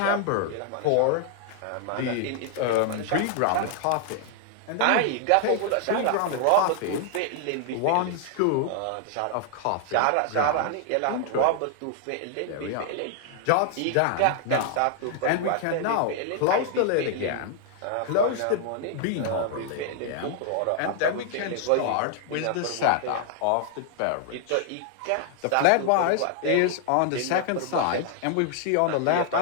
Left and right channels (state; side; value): different; both; correlation 0.00